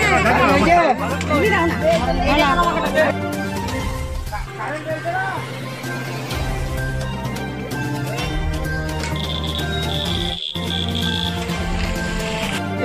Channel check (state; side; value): identical; both; correlation 1.00